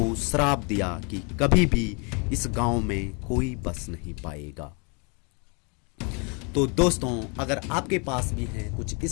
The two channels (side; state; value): right; quieter; 33.9 dB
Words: श्राप दिया कि कभी भी इस गांव में कोई बस नहीं पाएगा। तो दोस्तों, अगर आपके पास भी हैं कुछ